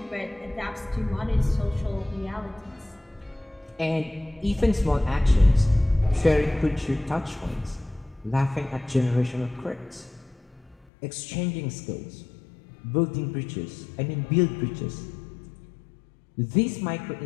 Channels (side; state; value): right; drops out; at 10.9 s